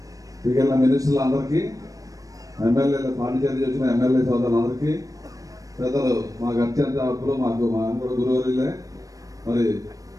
మిగిలిన మినిస్టర్లు అందరికీ, ఎమ్మెల్యేలు పాండిచేరి వచ్చిన ఎమ్మెల్యే సోదరులందరికీ, పెద్దలు మాకు అత్యంత ఆప్తులు, మాకు కూడా గురువర్యులే, మరి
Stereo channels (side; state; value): left; late; 0.16 ms